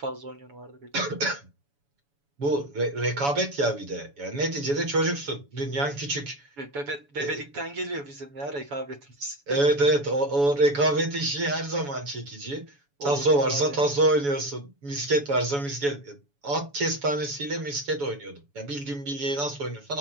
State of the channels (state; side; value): late; left; 7.1 ms